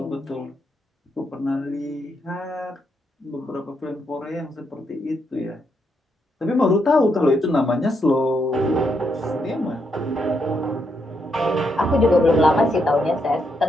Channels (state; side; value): normal; both; correlation 0.79